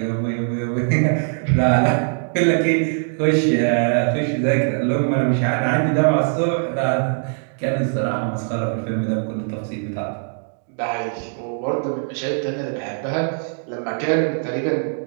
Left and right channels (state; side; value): silent; left; 65 dB below the other